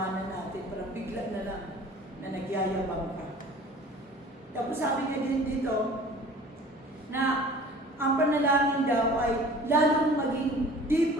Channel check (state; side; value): normal; both; correlation 0.46